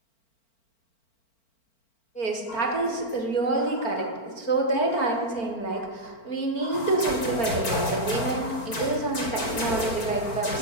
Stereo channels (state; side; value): late; right; 4.4 ms